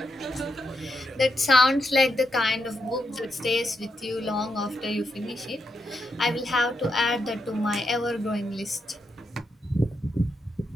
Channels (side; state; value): both; normal; correlation 0.83